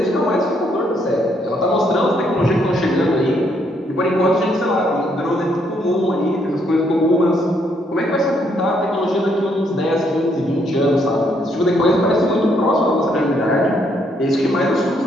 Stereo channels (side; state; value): both; normal; correlation 0.72